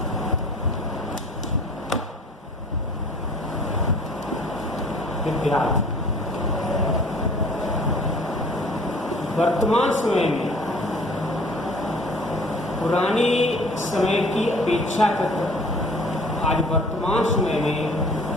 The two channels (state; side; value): normal; both; correlation 0.49